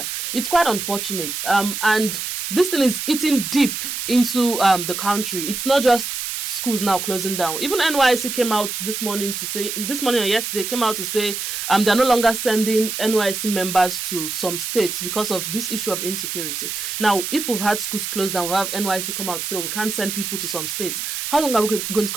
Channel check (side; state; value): right; noise; hiss, 4 dB below the sound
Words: It's quite unfortunate. And this thing is eating deep into the country. It's not just schools now closing down. Even NYSC came out this morning or yesterday, came out to say they're no longer sending NYSC members to some states because of this issue of insecurity. Now, if we've had schools closed down, we'll have NYSC come out to say, we can't send people to some states. How long are we going to